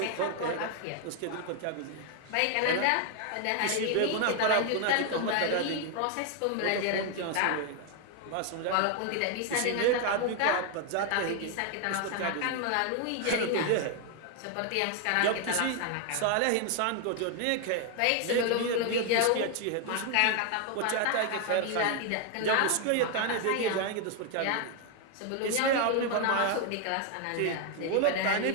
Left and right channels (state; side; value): different; both; correlation 0.01